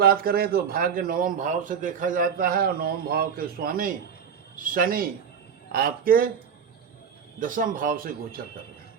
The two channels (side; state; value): left; quieter; 7.3 dB